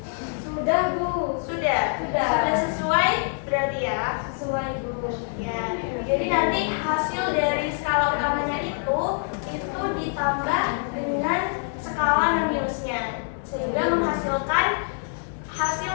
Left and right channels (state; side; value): silent; right; 59 dB below the other